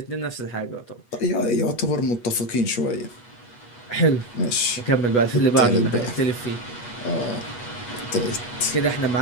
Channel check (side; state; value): right; late; 8.3 ms